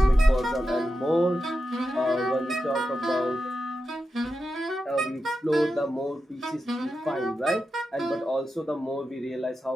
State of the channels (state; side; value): normal; both; correlation 0.90